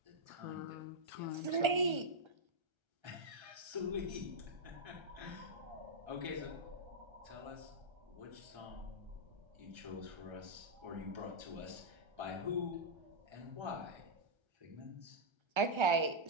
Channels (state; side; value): late; left; 1.3 ms